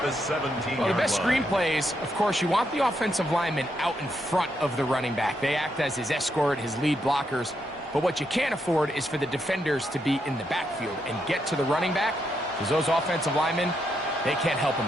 the 17-yard Well, the best line. screen plays, of course, you want the offensive linemen out in front of the running back. They act as his escort, his lead blockers. But what you can't afford is for the defenders to be in the backfield and get to the running back, because those offensive linemen, they can't help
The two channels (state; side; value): normal; both; correlation 0.80